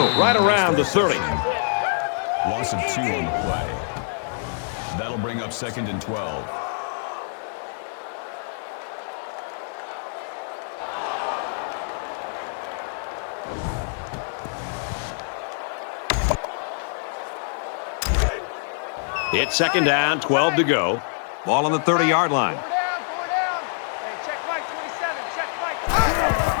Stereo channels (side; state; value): right; silent; digital silence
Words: right around the 30. Loss of 2 on the play. That'll bring up second and 12. It's second down, 12 to go. Ball on the 30-yard line.